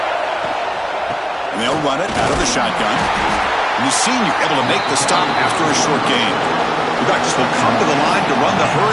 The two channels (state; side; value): identical; both; correlation 1.00